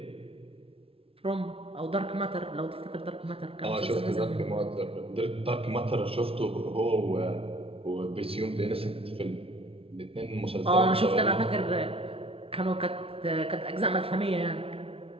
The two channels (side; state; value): left; late; 0.27 ms